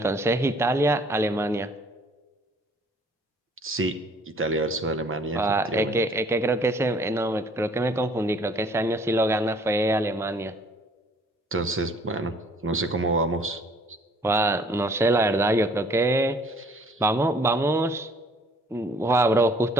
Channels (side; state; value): both; normal; correlation 0.58